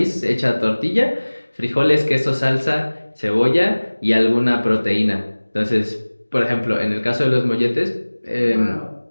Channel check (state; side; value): inverted; both; correlation -1.00